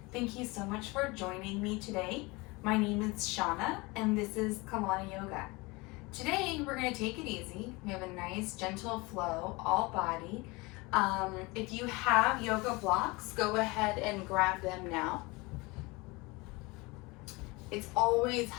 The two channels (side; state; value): right; quieter; 24.7 dB